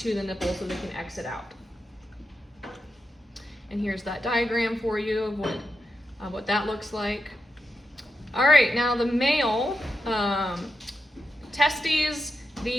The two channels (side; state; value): both; normal; correlation 0.88